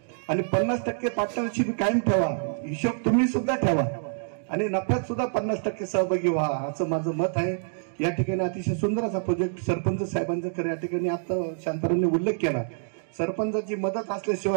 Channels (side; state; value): left; silent; digital silence